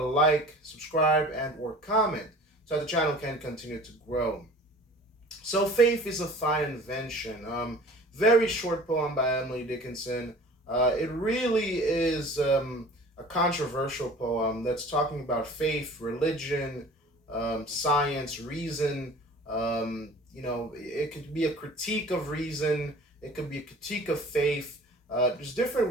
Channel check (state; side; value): normal; both; correlation 0.45